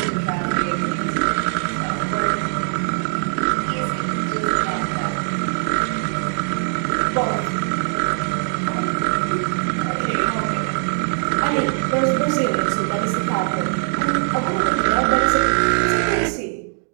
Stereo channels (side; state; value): left; silent; 60 dB below the other